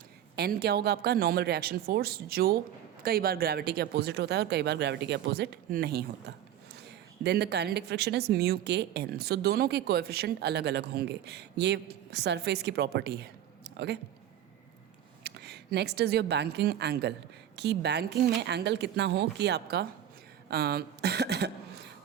एन क्या होगा, आपका नॉर्मल रिएक्शन फोर्स, जो कई बार ग्रेविटी के अपोजिट होता है और कई बार ग्रेविटी के अपोजिट नहीं होता। Then the kinetic friction is mu k N. दोनों के कोएफिशिएंट अलग अलग होंगे, ये सरफेस की प्रॉपर्टी है। Okay, next is your banking angle, कि बैंकिंग में एंगल कितना हो कि आपका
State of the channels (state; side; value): quieter; left; 10.9 dB